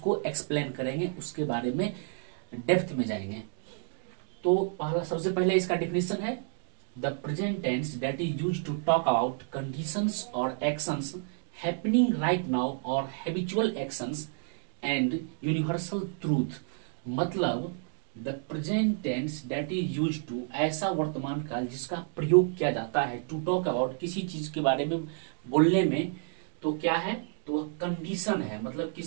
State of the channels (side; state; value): left; silent; digital silence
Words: एक्सप्लेन करेंगे, उसके बारे में डेप्थ में जाएंगे। तो पहला, सबसे पहले इसका डिफिनेशन है the present tense that is used to talk about conditions और एक्शंस हैपनिंग राइट नाउ और habitual actions and universal truth, मतलब the present tense that is used to, ऐसा वर्तमान काल जिसका प्रयोग किया जाता है टू टॉक अबाउट, किसी चीज के बारे में बोलने में। तो क्या है? तो वह कंडीशन है, मतलब